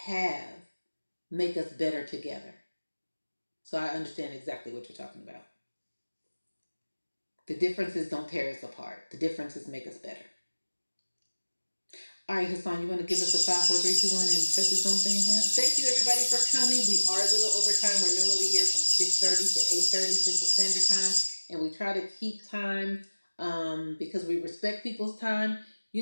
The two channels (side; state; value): both; inverted; correlation -1.00